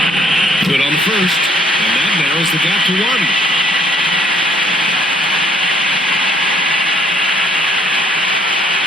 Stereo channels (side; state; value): both; normal; correlation 0.63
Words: Good on the first, and that narrows the gap to one.